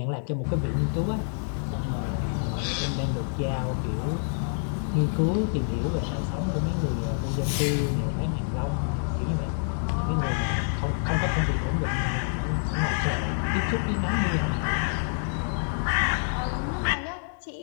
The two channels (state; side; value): silent; right; 59 dB below the other